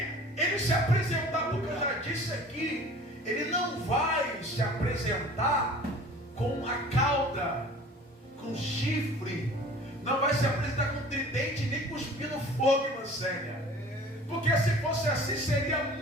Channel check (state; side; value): normal; both; correlation 0.46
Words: ele se apresentar, porque eu já disse aqui, ele não vai se apresentar com a cauda, com chifre, não vai se apresentar com tridente, nem cuspindo fogo, irmã Célia. Porque se fosse assim, seria